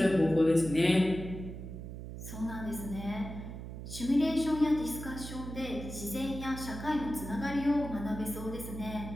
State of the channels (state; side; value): noise; right; hum, 9 dB below the sound